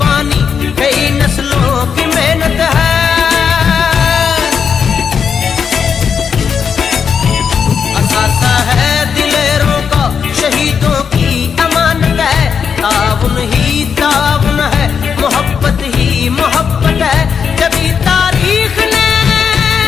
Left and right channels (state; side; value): quieter; right; 6.8 dB